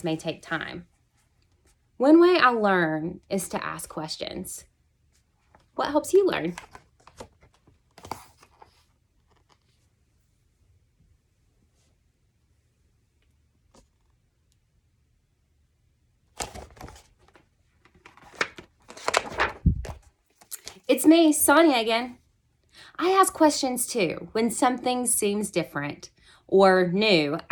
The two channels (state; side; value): identical; both; correlation 1.00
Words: may take time. One way I learn is to ask questions. What helps you learn? It's me, Sonia again. I ask questions too. When something seems different or new,